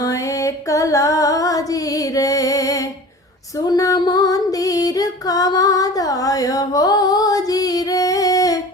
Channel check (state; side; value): normal; both; correlation 0.39